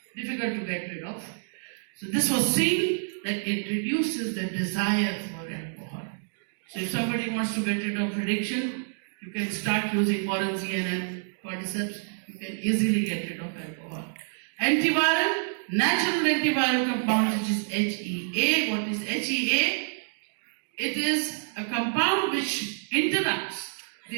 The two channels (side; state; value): left; silent; digital silence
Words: difficult to get rid of. So this was seen that it reduces the desire for alcohol. So if somebody wants to get rid of addiction, you can start using morinzine and cordyceps. You can easily get rid of alcohol. Antiviral, natural antiviral compound which is HEA. What is HEA? It is a compound which interrupts